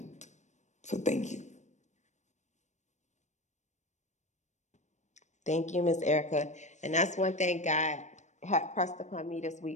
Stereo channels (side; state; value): right; late; 0.34 ms